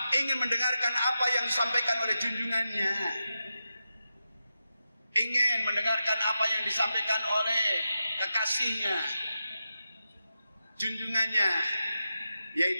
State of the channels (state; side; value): inverted; both; correlation -0.89